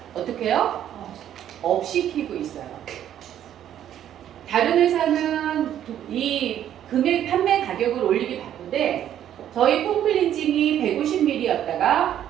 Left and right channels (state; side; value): quieter; left; 10.8 dB